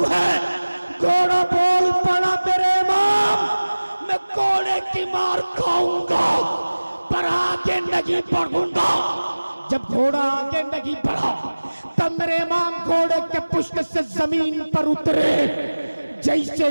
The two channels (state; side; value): inverted; both; correlation -1.00